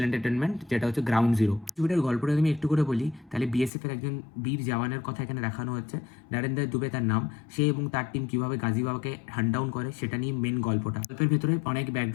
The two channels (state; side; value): drops out; right; at 3.7 s